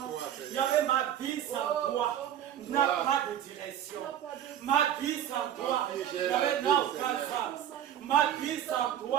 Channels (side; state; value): left; quieter; 10.4 dB